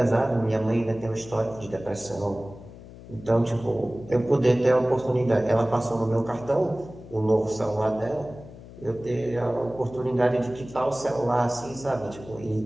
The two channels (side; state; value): left; noise; hum, 17 dB below the sound